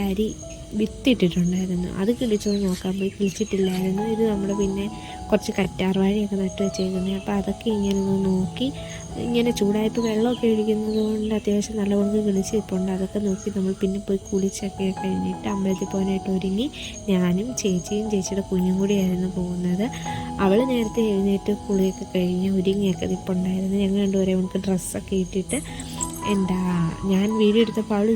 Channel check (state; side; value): identical; both; correlation 1.00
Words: അരി വിത്തിട്ടിട്ടുണ്ടായിരുന്നു. അത് കിളിച്ചോന്ന് നോക്കാൻ പോയി, കിളിച്ചിട്ടില്ലായിരുന്നു. ഇത് നമ്മൾ പിന്നെ കുറച്ച് കറ്റാർവാഴയൊക്കെ നട്ട് വെച്ചേക്കുന്നത്. അപ്പോൾ അതൊക്കെ ഇങ്ങനെ ഒന്ന് നോക്കി, ഇങ്ങനെ ചൂടായപ്പോൾ വെള്ളമൊക്കെ ഒഴിക്കുന്നത് കൊണ്ട് അത്യാവശ്യം നല്ലവണ്ണം കിളിച്ചിട്ടുണ്ട്. അതൊക്കെ നോക്കി നമ്മൾ പിന്നെ പോയി കുളിച്ചൊക്കെ കഴിഞ്ഞിട്ട് അമ്പലത്തിൽ പോകാനായിട്ട് ഒരുങ്ങി. ഞാനും ചേച്ചിയും ചേച്ചിയുടെ കുഞ്ഞും കൂടിയായിരുന്നു പോകുന്നത്. അവൾ നേരത്തെ എഴുന്നേറ്റ് കുളിയൊക്കെ കഴിഞ്ഞ് ഒരുങ്ങിയൊക്കെ നിൽപ്പുണ്ടായിരുന്നു. ഞങ്ങൾ രണ്ടുപേരെ നമുക്ക് ഡ്രസ്സൊക്കെ ഇട്ടിട്ട് ഞാൻ വീഡിയോ എടുത്തപ്പോൾ അവൾ